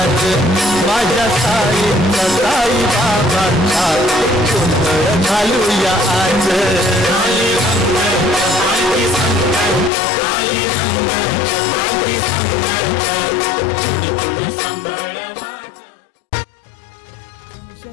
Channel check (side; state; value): right; drops out; at 9.9 s